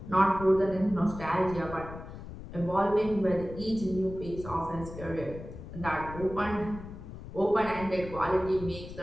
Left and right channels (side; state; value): left; noise; rumble, 12 dB below the sound